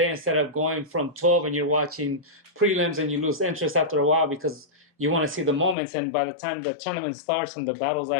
instead of going from 12 and you're watching prelims and you lose interest after a while because you want to see the moments, and by the time the tournament starts and the battle's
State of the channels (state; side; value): drops out; right; at 5.8 s